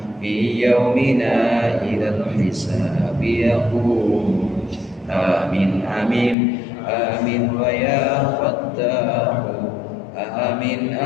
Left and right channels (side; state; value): right; drops out; at 6.4 s